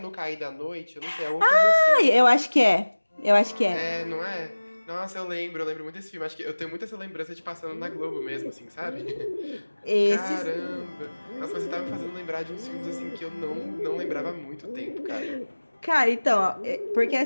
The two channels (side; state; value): both; inverted; correlation -1.00